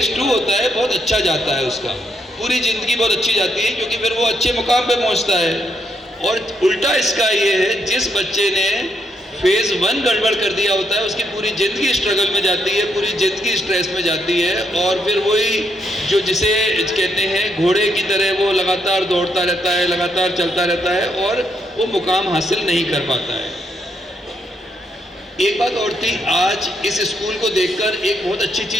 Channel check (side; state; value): both; normal; correlation 0.76